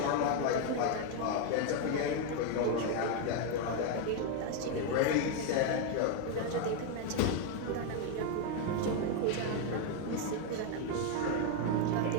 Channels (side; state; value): both; different; correlation 0.01